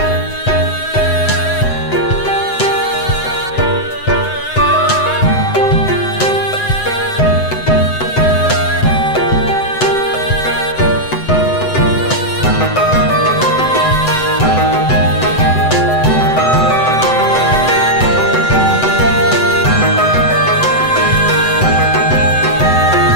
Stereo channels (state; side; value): late; right; 7.9 ms